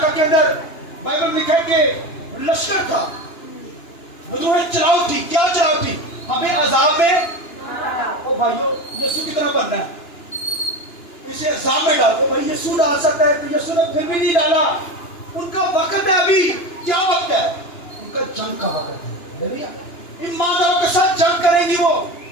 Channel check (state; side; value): late; right; 2.9 ms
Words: کے اندر بائبل میں لکھا ہے کہ لشکر تھا، وجوہ چلاؤ تھی، کیا چلاؤ تھی، ہمیں عذاب میں، او بھائیو یسوع کی طرح بننا ہے، اسے عذاب میں ڈالو. بھائی یسوع ڈال سکتا ہے، تو یسوع نے پھر بھی نہیں ڈالا. ان کا وقت ہے، ابھی کیا وقت ہے، ان کا جنگ کا وقت ہے. ایمانداروں کے ساتھ جنگ کریں گی، وہ